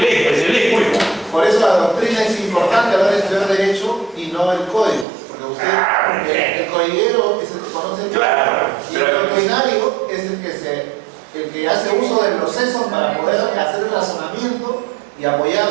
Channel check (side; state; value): left; drops out; at 5.1 s